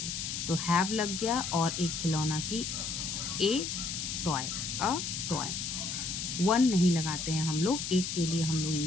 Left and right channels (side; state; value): left; noise; hiss, 4 dB below the sound